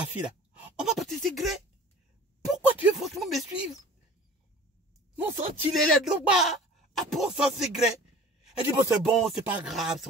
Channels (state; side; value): normal; both; correlation 0.44